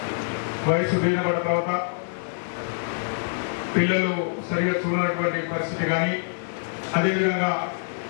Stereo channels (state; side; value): silent; right; digital silence